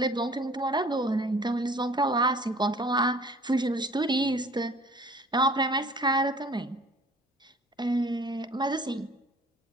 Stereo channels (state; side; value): normal; both; correlation 0.50